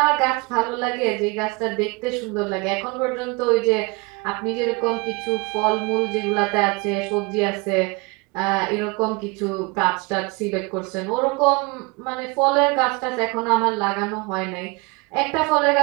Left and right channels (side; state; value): left; quieter; 27.3 dB